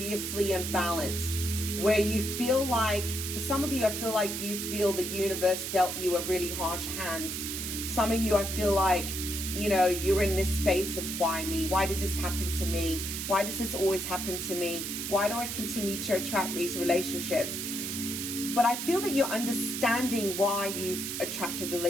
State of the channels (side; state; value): right; noise; hiss, 4 dB below the sound